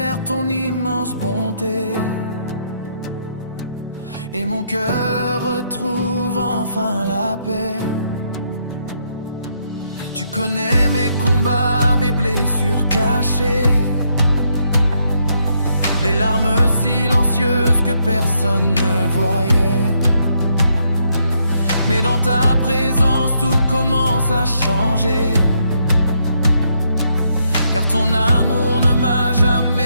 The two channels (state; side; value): inverted; both; correlation -0.75